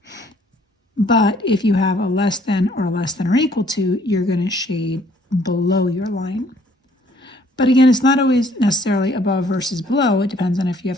But if you have a less than or equal to, you're going to shade below your line. But again, it's not always necessarily above versus below. It depends on if you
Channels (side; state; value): both; normal; correlation 0.62